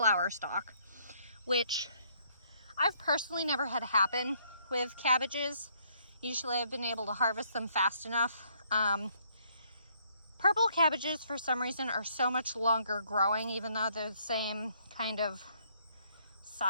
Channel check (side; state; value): both; inverted; correlation -0.67